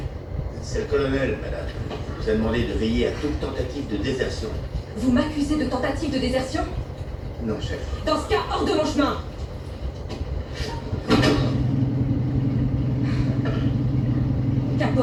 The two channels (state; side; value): identical; both; correlation 1.00